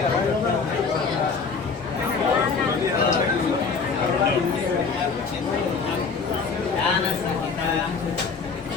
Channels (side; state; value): right; quieter; 5.1 dB